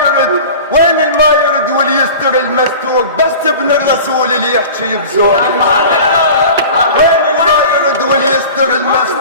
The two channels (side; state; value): both; inverted; correlation -0.38